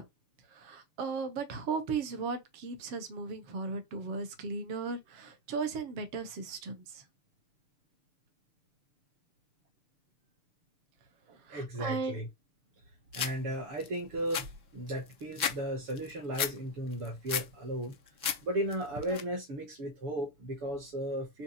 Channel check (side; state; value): left; late; 6.8 ms